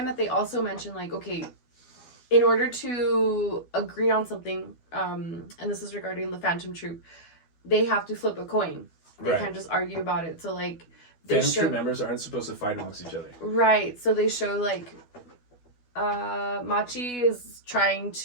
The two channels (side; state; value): right; late; 12 ms